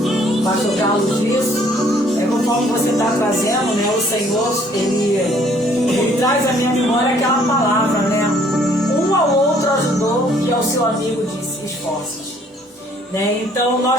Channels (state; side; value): normal; both; correlation 0.61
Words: o pastor Carlos disse, conforme você está trazendo, né, o Senhor, ele traz à minha memória aquela palavra, né? Um ao outro ajudou, que ao seu amigo disse, esforços. Né? Então,